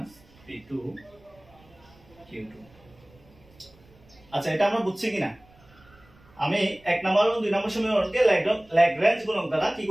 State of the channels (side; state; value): right; noise; rumble, 28 dB below the sound